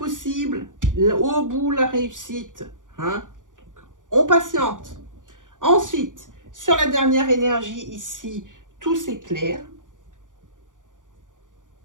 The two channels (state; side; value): late; left; 0.88 ms